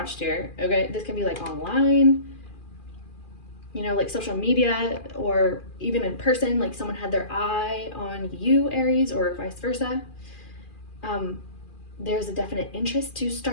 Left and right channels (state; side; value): late; right; 2.4 ms